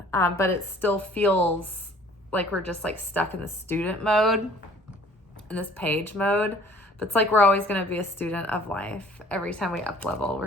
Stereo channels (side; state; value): both; normal; correlation 0.53